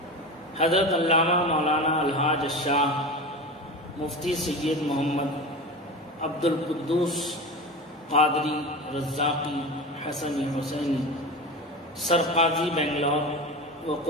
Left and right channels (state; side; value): normal; both; correlation 0.28